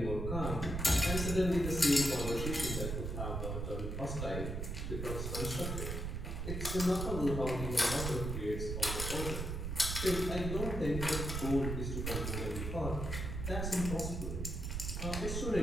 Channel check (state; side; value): noise; right; rumble, 3 dB below the sound